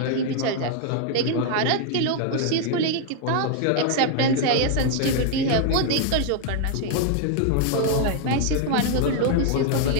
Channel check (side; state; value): both; different; correlation 0.00